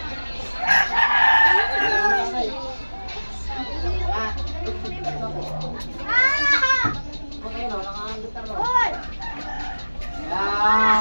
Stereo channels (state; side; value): inverted; both; correlation -1.00